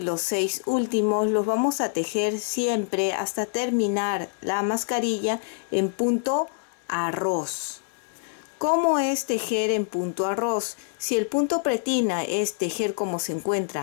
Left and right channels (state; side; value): silent; right; digital silence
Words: los 6 últimos los vamos a tejer siempre hasta terminar la mascarilla en punto arroz. ¿Cómo es tejer en punto arroz? Si el punto pretina es tejer como se